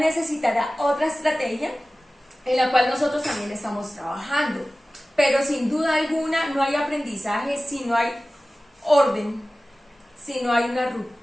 otra estrategia en la cual nosotros también estamos trabajando. Pero sin duda alguna no hay aprendizaje si no hay orden, si no hay una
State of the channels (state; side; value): normal; both; correlation 0.97